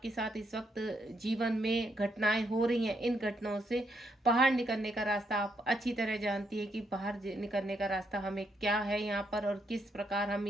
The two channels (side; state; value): both; normal; correlation 0.77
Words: साथ इस वक्त जीवन में घटनाएं हो रही हैं, इन घटनाओं से बाहर निकलने का रास्ता आप अच्छी तरह जानती है कि बाहर निकलने का रास्ता हमें क्या है यहाँ पर, और किस प्रकार हम